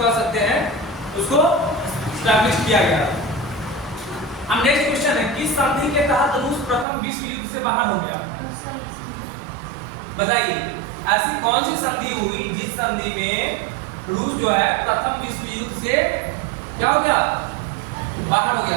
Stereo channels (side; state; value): left; drops out; at 6.9 s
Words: सकते हैं, उसको एस्टैब्लिश किया गया। अब नेक्स्ट क्वेश्चन है, किस संधि के तहत रूस प्रथम विश्व युद्ध से बाहर हो गया? बताइए, ऐसी कौन सी संधि हुई जिस संधि में रूस जो है प्रथम विश्व युद्ध से क्या हो गया? बाहर हो गया।